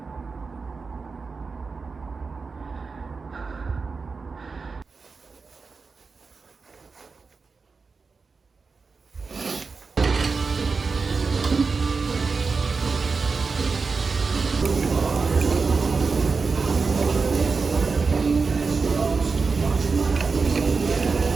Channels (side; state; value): left; quieter; 4.6 dB